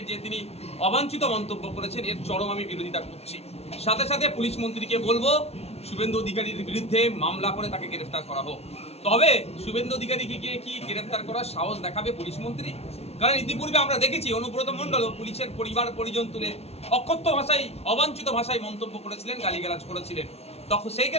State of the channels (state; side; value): late; right; 0.30 ms